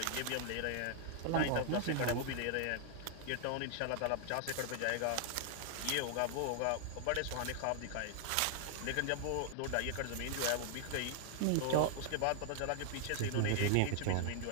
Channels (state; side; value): different; both; correlation 0.00